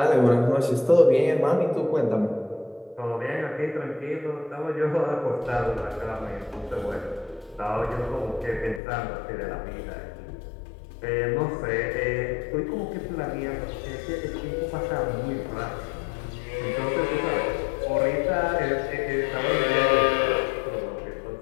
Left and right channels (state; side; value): drops out; right; at 8.8 s